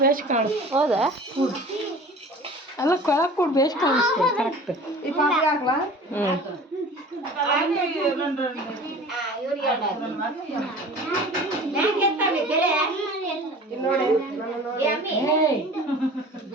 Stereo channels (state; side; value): normal; both; correlation 0.42